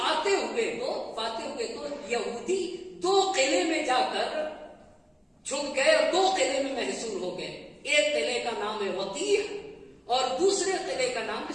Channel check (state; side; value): identical; both; correlation 1.00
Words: ہوئے تو یہودی 2 قلعے میں جا کر چھپ گئے اور 2 قلعے میں محصور ہو گئے. ایک قلعے کا نام ہے وطیح اور دوسرے قلعے کا نام